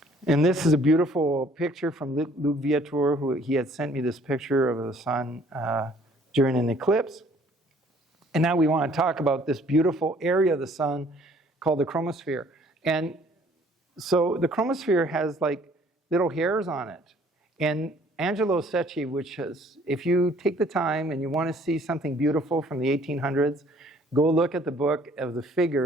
And this is a beautiful picture from Luc Viator, who he had sent me this picture of the sun during an eclipse. And now we want to talk about this beautiful area of the sun called the chromosphere. And so the chromosphere has like little hairs on it. And Angelo Secchi, which is, if you take the time and you want to see something beautiful from the 1800s, go look at the book of the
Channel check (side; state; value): both; normal; correlation 0.58